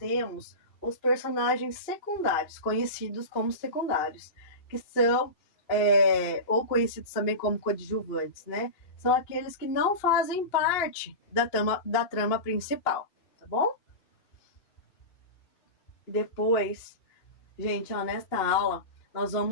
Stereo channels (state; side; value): late; right; 2.8 ms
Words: os personagens secundários, conhecidos como secundários, que são ou conhecidos também como coadjuvantes, né? São aqueles que não fazem parte da trama principal, tá bom? Depois, gente, nesta aula, nós